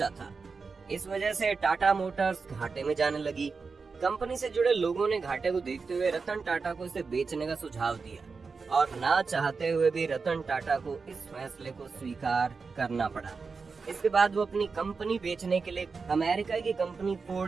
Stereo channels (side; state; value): left; quieter; 4.8 dB